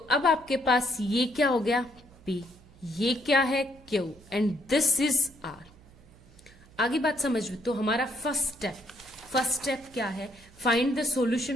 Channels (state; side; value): noise; right; hum, 25 dB below the sound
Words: आपके पास ये क्या हो गया? P, ये क्या है? Q, and this is R। आगे बात समझ में? तो हमारा फर्स्ट स्टेप क्या है? Find the